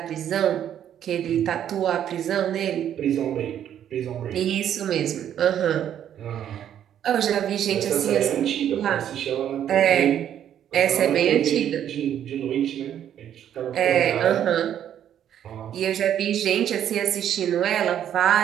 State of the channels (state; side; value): quieter; left; 10.1 dB